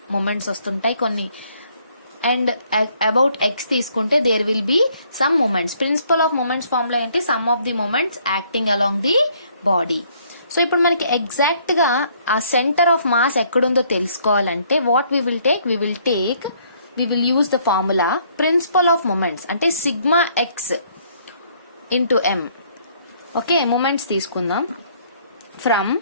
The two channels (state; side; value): inverted; both; correlation -0.65